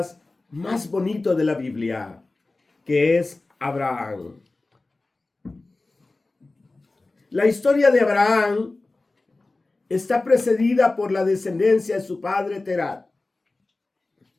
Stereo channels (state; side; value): quieter; right; 3.2 dB